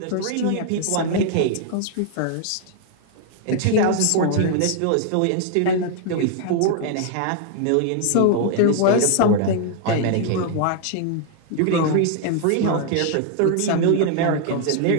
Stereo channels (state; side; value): different; both; correlation 0.00